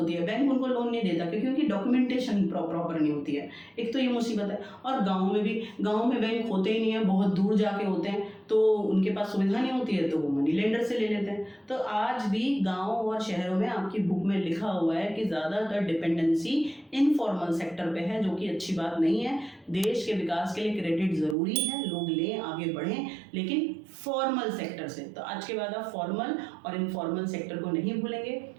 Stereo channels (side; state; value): left; drops out; at 21.4 s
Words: है, बैंक उनको लोन नहीं देता क्योंकि उनकी डॉक्यूमेंटेशन प्रॉपर नहीं होती है। एक तो ये मुसीबत है। और गाँव में भी, गाँव में बैंक होते ही नहीं है, बहुत दूर जाके होते हैं, तो उनके पास सुविधा नहीं होती है, तो वो मनी लेंडर से ले लेते हैं। तो आज भी गांव और शहरों में आपकी बुक में लिखा हुआ है कि ज़्यादातर डिपेंडेंसी इनफॉर्मल सेक्टर पे है, जो कि अच्छी बात नहीं है। देश के विकास के लिए क्रेडिट ज़रूरी है, लोग लें, आगे बढ़ें, लेकिन फॉर्मल सेक्टर से। तो आज के बाद आप फॉर्मल और इनफॉर्मल सेक्टर को नहीं भूलेंगे।